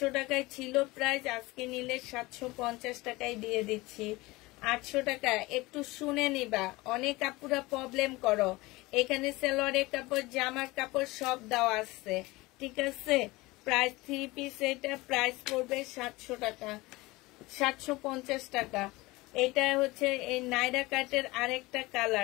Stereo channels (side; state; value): right; quieter; 21.4 dB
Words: টাকায় ছিল প্রাইস, আজকে নিলে 750 টাকায় দিয়ে দিচ্ছি। 800 টাকা। একটু শুনে নিবা, অনেক আপুরা প্রবলেম করো। এখানে সালোয়ারের কাপড়, জামার কাপড় সব দেওয়া আছে, ঠিক আছে। প্রাইস 3 পিস, এটা প্রাইস পড়বে 700 টাকা, 750 টাকা। এটা হচ্ছে এই নাইরা কাটের আরেকটা